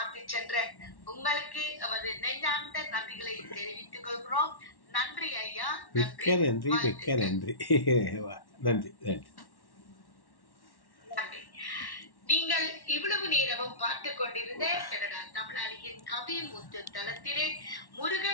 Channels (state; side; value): late; right; 1.1 ms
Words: சென்ற உங்களுக்கு நமது நெஞ்சார்ந்த நன்றிகளை தெரிவித்துக் கொள்கிறோம். நன்றி ஐயா. மிக்க நன்றி, மிக்க நன்றி. நன்றி நன்றி. நீங்கள் இவ்வளவு நேரமும் பார்த்து கொண்டிருந்த கனடா தமிழாளியின் கவிமுத்து தளத்திலே